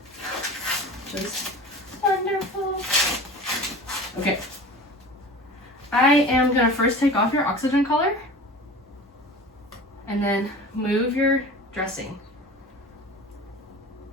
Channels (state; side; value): normal; both; correlation 0.37